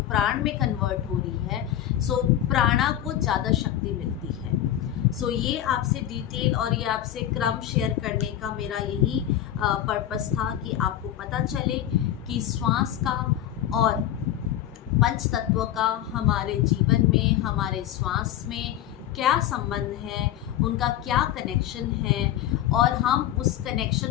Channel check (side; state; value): right; quieter; 11.7 dB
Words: प्राण में कन्वर्ट हो रही है, सो प्राणा को ज़्यादा शक्ति मिलती है। सो ये आपसे डिटेल और ये आपसे क्रम शेयर करने का मेरा यही पर्पस था कि आपको पता चले कि श्वास का और पंच तत्व का हमारे जीवन में, हमारे श्वास में क्या संबंध है, उनका क्या कनेक्शन है और हम उस